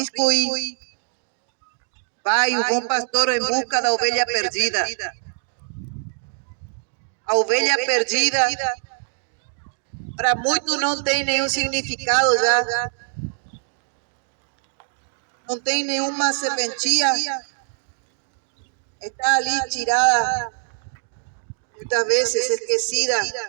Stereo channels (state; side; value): silent; left; digital silence